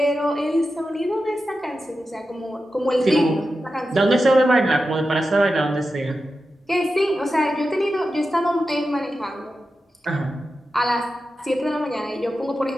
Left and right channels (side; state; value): both; normal; correlation 0.91